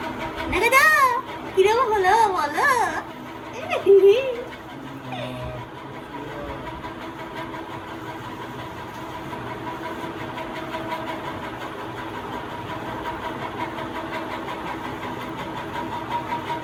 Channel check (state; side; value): identical; both; correlation 1.00